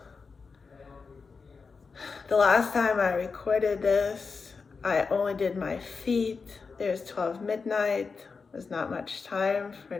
The last time I recorded this, I only did my feet. It was 12 midnight. There's not much time for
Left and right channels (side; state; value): right; quieter; 4.9 dB